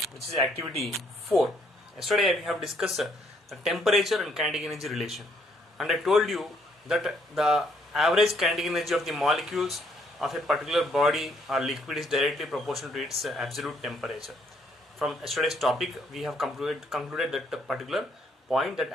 which is activity 4. Yesterday we have discussed the temperature and kinetic energy relation, and I told you that the average kinetic energy of the molecules of a particular body or liquid is directly proportional to its absolute temperature. From yesterday's topic, we have concluded that the particular point that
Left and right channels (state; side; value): normal; both; correlation 0.68